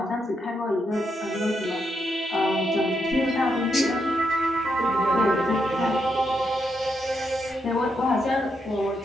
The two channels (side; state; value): both; normal; correlation 0.81